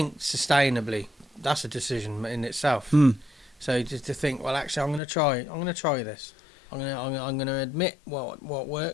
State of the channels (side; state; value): right; drops out; at 5.0 s